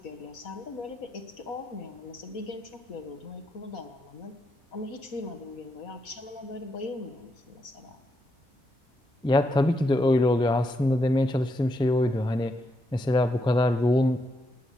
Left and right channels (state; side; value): normal; both; correlation 0.81